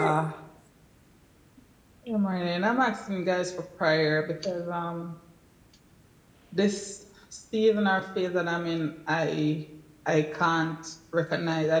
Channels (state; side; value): identical; both; correlation 1.00